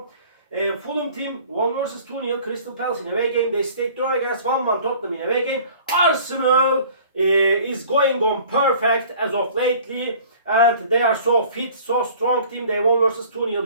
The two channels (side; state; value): both; inverted; correlation -0.49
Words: Fulham team won versus 2-0 Crystal Palace in away game. They stayed draw against 1-1 Tottenham in away game. Arsenal is going on perfect as of lately, and they are so fit, so strong team. They won versus 2-0